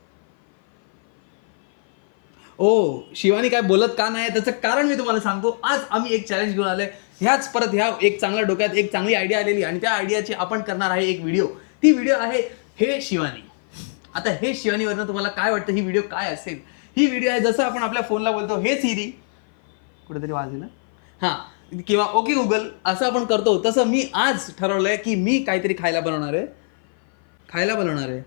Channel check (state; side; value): silent; right; 57 dB below the other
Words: ओ शिवानी काय बोलत का नाही त्याचं कारण मी तुम्हाला सांगतो. आज आम्ही एक चॅलेंज घेऊन आलोय. ह्या एक चांगल्या डोक्यात एक चांगली आयडिया आलेली आणि त्या आयडियाची आपण करणार आहे एक व्हिडिओ. ती व्हिडिओ आहे हे शिवानी. आता हे शिवानीवरनं तुम्हाला काय वाटतं ही व्हिडिओ काय असेल? ही व्हिडिओ आहे जसं आपण आपल्या फोनला बोलतो हे सिरी, कुठेतरी वाजलं हां, किंवा ओके गुगल असं आपण करतो, तसं मी आज ठरवलंय की मी काहीतरी खायला बनवणार आहे.